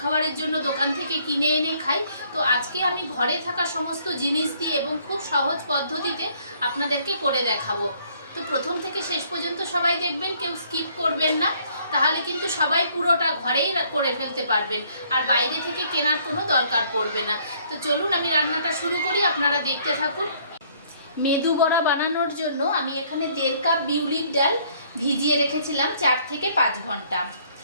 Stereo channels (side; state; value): both; inverted; correlation -0.63